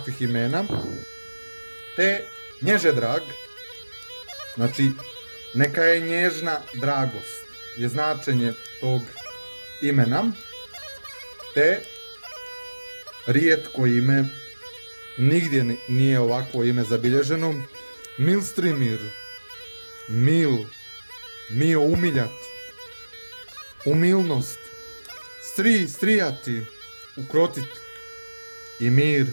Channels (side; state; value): both; inverted; correlation -1.00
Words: imena. Te nježedrag, znači neka je nježna dragost, je značenje tog imena, te rijetko ime, nigdje nije ovakvo ime zabilježeno, Milstrimir, mio umiljat, umilnost, strijati, ukrotiti i